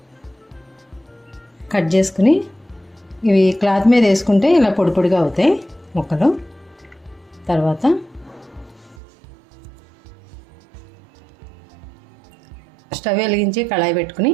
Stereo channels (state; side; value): drops out; left; at 9.0 s